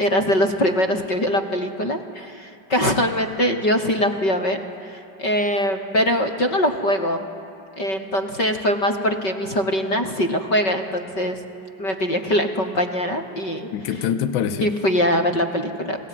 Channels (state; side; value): late; right; 5.3 ms